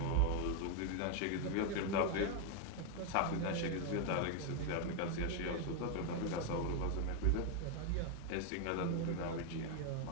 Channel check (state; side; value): different; both; correlation 0.01